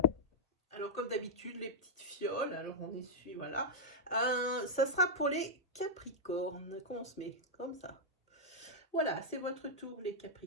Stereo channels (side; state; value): both; normal; correlation -0.06